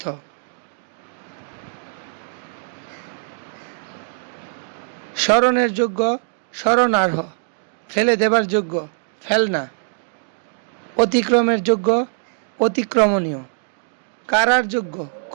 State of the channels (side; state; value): left; silent; digital silence